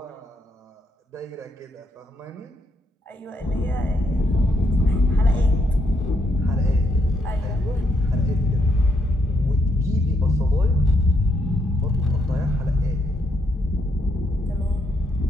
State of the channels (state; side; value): normal; both; correlation 0.76